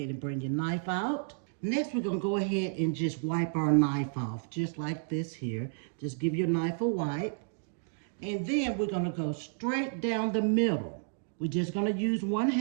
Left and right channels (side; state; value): left; silent; digital silence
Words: and bring your knife out. Next, we're going to go ahead and just wipe our knife off, just like this here. Just give your knife a wipe. And then we're going to go straight down the middle. We're just going to use